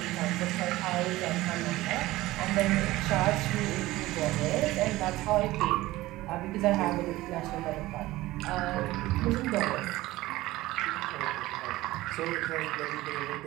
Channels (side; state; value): left; quieter; 17.8 dB